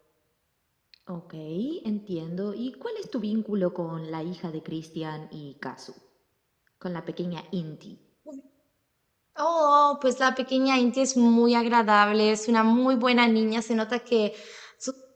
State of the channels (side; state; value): both; identical; correlation 1.00